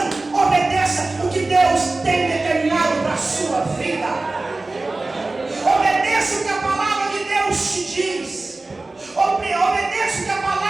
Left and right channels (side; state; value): left; quieter; 3.2 dB